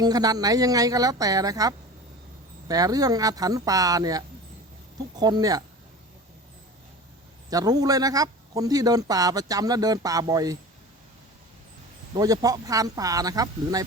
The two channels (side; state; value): both; normal; correlation 0.35